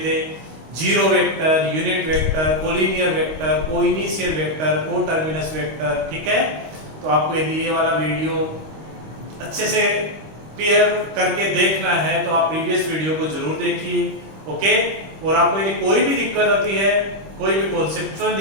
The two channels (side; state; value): left; late; 26 ms